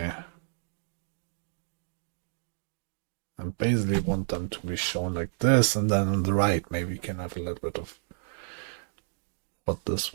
I basically want them to be shown like this, and then on the right maybe you can have a little bit of what this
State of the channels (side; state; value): left; silent; digital silence